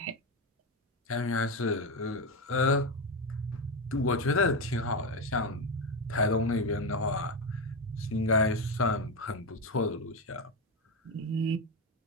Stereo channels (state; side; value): normal; both; correlation 0.13